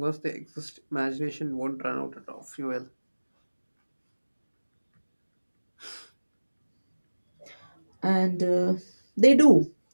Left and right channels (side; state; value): both; inverted; correlation -1.00